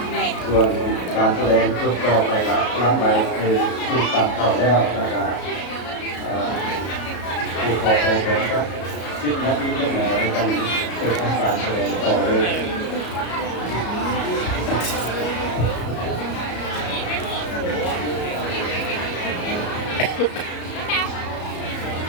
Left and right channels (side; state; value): right; late; 33 ms